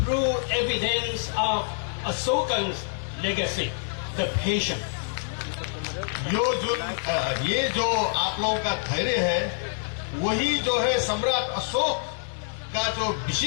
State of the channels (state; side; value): silent; right; digital silence